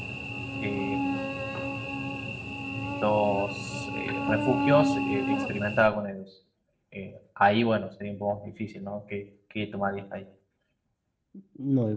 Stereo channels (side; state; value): both; identical; correlation 1.00